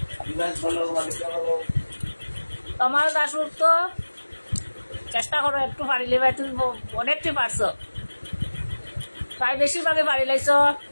বিবাস বলো মালিকা বলো তোমার দাসপুর তো চেষ্টা করো একটু পারিলে ভাই তুমি অনেকটি পারছো প্রায় বেশিরভাগে পারি লাইছ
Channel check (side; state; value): both; inverted; correlation -1.00